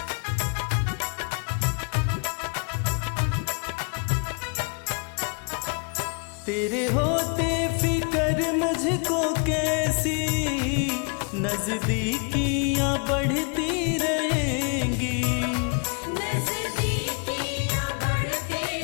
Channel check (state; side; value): quieter; right; 35.9 dB